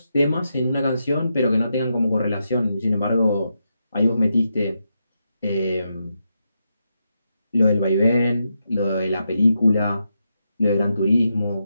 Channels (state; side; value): inverted; both; correlation -0.85